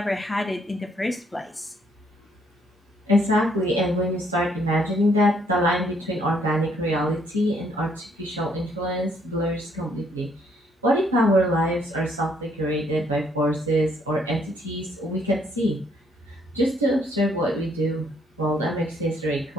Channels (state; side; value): normal; both; correlation 0.68